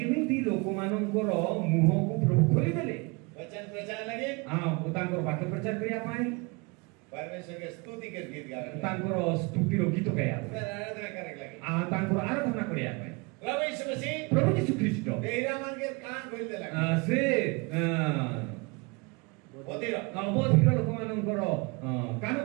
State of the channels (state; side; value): quieter; left; 28.5 dB